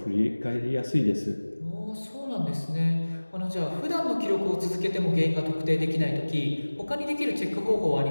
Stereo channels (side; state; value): both; inverted; correlation -1.00